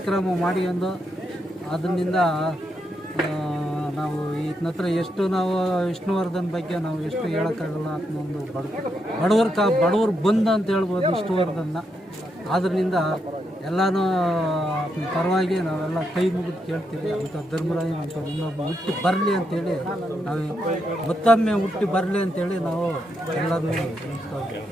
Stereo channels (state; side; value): normal; both; correlation 0.81